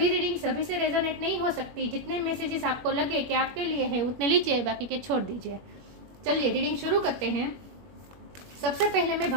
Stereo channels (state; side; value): late; left; 21 ms